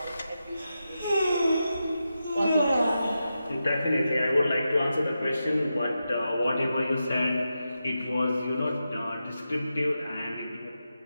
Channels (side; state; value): both; inverted; correlation -0.89